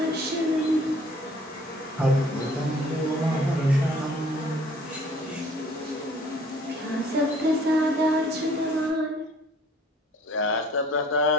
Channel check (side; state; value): both; normal; correlation 0.55